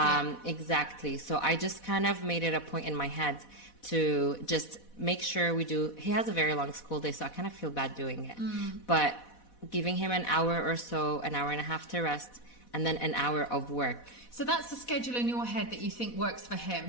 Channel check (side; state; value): right; late; 4.1 ms